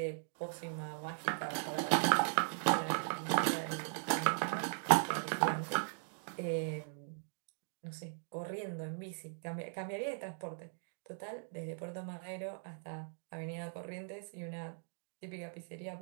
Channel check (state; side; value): silent; left; digital silence